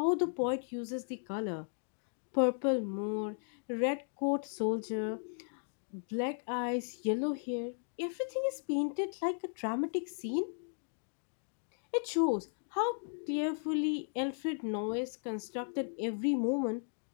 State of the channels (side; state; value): right; silent; digital silence